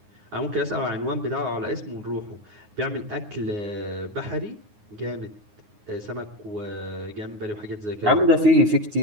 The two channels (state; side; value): late; left; 9.7 ms